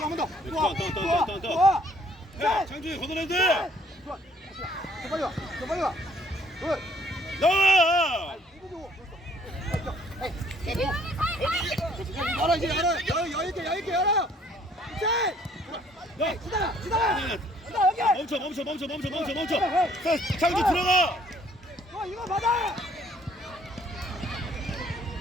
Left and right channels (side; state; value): both; normal; correlation 0.62